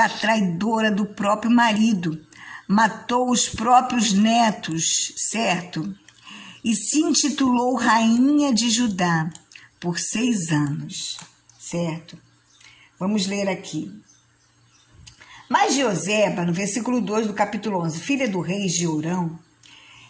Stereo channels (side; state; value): both; identical; correlation 1.00